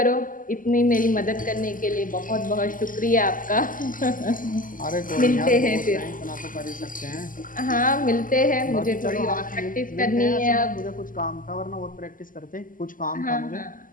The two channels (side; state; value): right; late; 0.39 ms